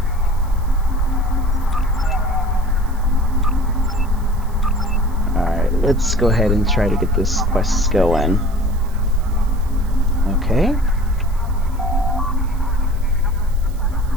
Alright, let's go ahead and try to get this quest going. Okay.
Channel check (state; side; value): noise; right; hiss, 25 dB below the sound